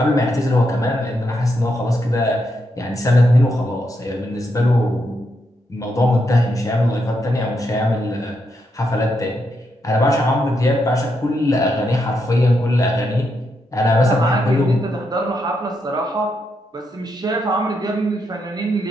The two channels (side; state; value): both; normal; correlation 0.81